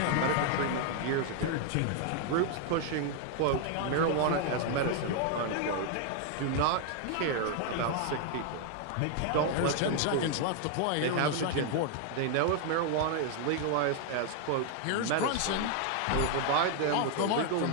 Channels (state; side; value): different; both; correlation 0.00